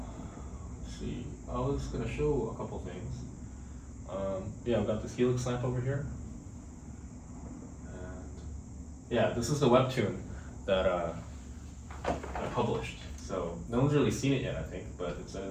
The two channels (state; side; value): identical; both; correlation 1.00